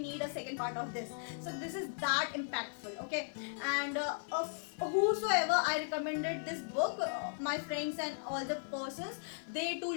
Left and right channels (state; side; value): silent; right; digital silence